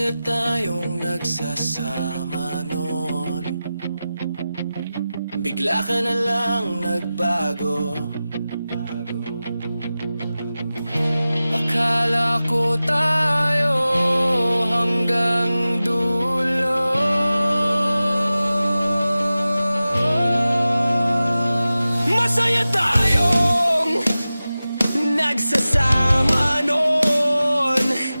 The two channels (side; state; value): both; inverted; correlation -0.95